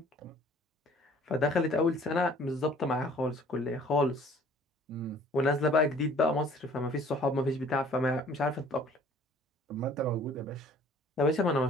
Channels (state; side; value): normal; both; correlation 0.53